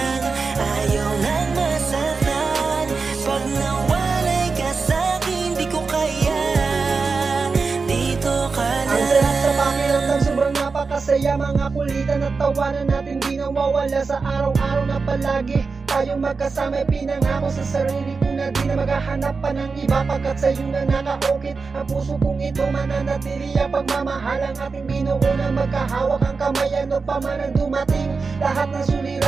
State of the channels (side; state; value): left; quieter; 4.6 dB